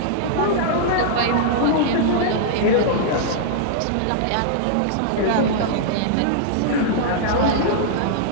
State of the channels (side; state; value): both; different; correlation -0.02